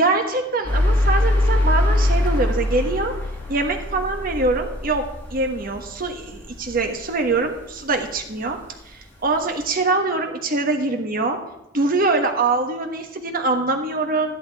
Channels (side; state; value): both; normal; correlation 0.37